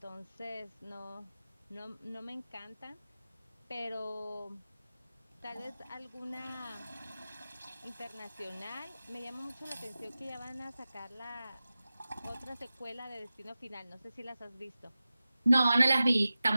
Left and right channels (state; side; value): inverted; both; correlation -0.95